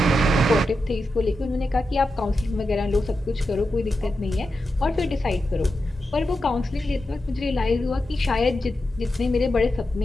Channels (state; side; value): normal; both; correlation 0.90